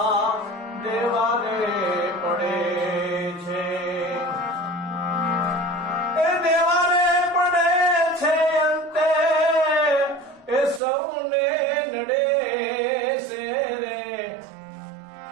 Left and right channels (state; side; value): drops out; left; at 10.8 s